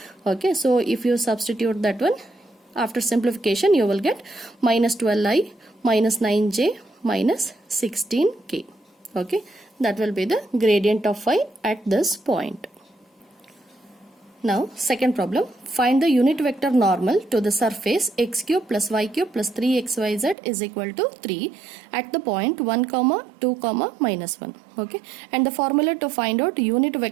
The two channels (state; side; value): drops out; left; at 20.4 s